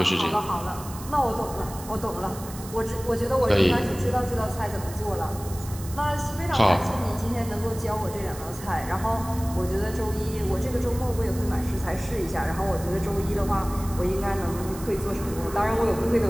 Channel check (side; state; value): right; noise; hiss, 15 dB below the sound